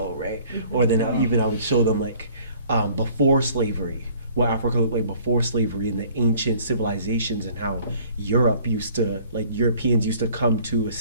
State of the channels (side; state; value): both; inverted; correlation -0.55